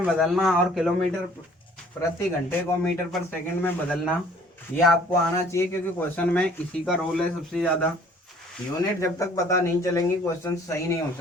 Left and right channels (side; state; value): both; normal; correlation 0.55